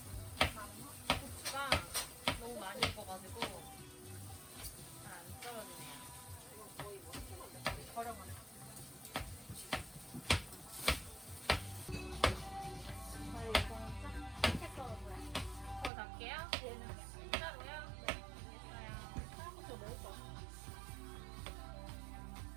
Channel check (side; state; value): left; drops out; at 15.9 s